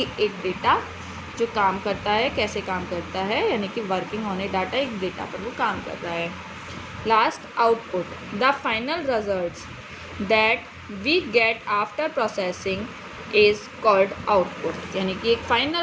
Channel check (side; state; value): both; identical; correlation 1.00